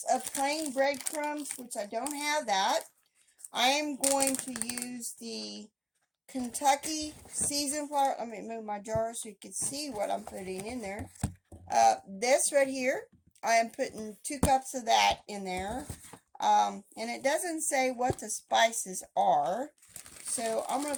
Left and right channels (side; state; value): both; identical; correlation 1.00